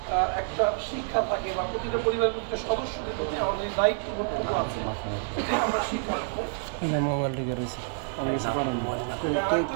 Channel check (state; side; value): silent; left; 59 dB below the other